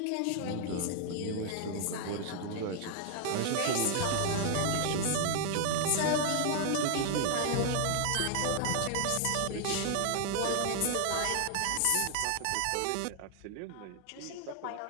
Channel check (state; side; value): different; both; correlation 0.00